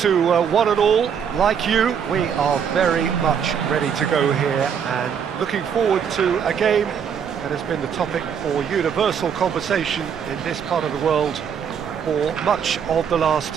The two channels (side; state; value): left; quieter; 7.6 dB